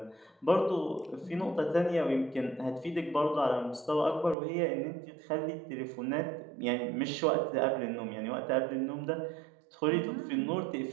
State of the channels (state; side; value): drops out; left; at 4.4 s